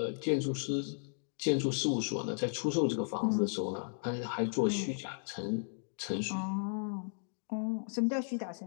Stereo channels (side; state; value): right; silent; digital silence